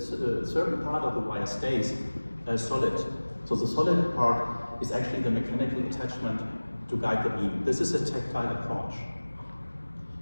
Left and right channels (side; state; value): both; inverted; correlation -1.00